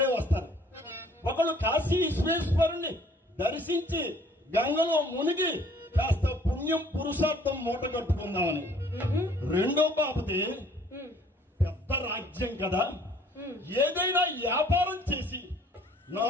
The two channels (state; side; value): normal; both; correlation 0.57